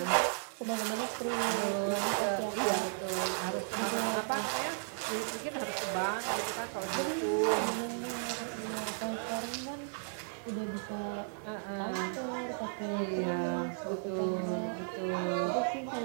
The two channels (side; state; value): left; silent; digital silence